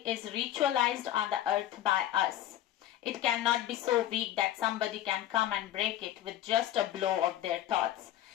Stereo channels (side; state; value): right; quieter; 12.6 dB